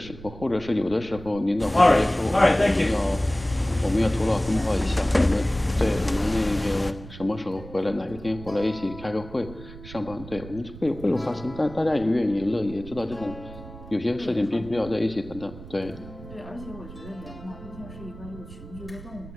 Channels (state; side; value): noise; right; rumble, 15 dB below the sound